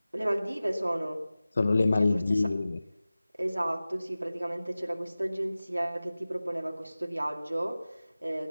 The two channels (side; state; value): both; inverted; correlation -0.97